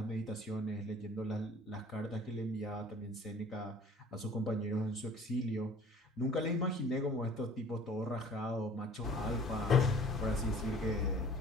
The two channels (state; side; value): normal; both; correlation 0.49